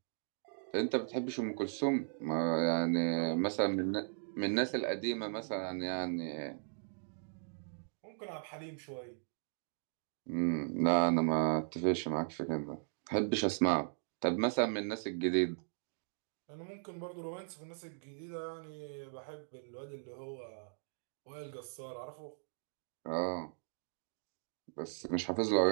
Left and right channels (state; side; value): silent; left; digital silence